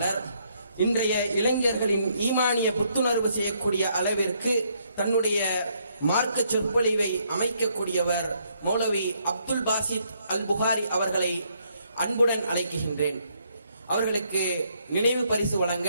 இன்றைய இளைஞர்களின் ஈமானிய புத்துணர்வு செய்யக்கூடிய அளவிற்கு தன்னுடைய மார்க்க சொற்பொழிவை அமைக்கக்கூடியவர் மௌலவி அப்துல் பாசித் அல் புகாரி அவர்களை அன்புடன் அழைக்கின்றேன். அவர்களுக்கு நினைவு பரிசு வழங்க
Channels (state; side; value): inverted; both; correlation -0.71